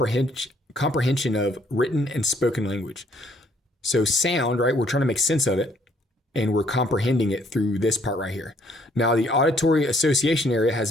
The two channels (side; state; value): both; normal; correlation 0.65